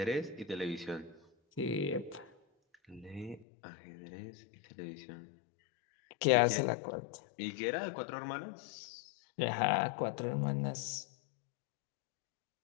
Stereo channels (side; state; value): right; drops out; at 3.5 s